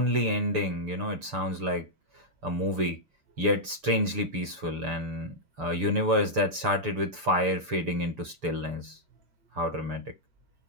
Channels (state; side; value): late; left; 6.9 ms